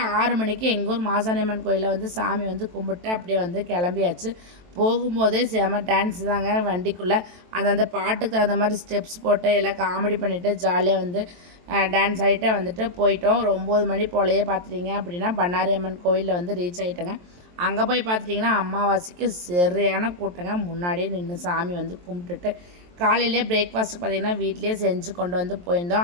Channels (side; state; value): left; late; 23 ms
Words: 6 மணிக்கு எங்கள் ஊர் மாசாணியம்மன் கோயிலில் வந்து சாமி வந்து கும்பிட்டு அப்படியே வந்து கிளம்பியாச்சு. போகும்போதே செம டான்ஸ் தாங்க வண்டிக்குள்ளே. அந்தந்த பாட்டுக்கு தகுந்த மாதிரி ஸ்டெப்ஸ் போட்டு எல்லாம் காமெடி பண்ணிவிட்டு ஜாலியாக வந்து டான்ஸ் ஆகிட்டே வந்துட்டு போயிட்டோம். ஒரு 9 மணி போலையே பார்த்துட்டிங்க அப்படின்னா பண்ணாரி அம்மன் கோயிலில் வந்து ரீச் ஆகிட்டேங்க. அங்கே போய் பார்த்துட்டிங்கன்னா அமாவாசைக்கு சரியான கூட்டங்க. முன்னாடியே நின்று சாமி வந்து கும்பிட்டுட்டு காலையிலே பிரேக்ஃபாஸ்ட்டு பார்த்திங்கன்னா வீட்லேயே செஞ்சு கொண்டு வந்து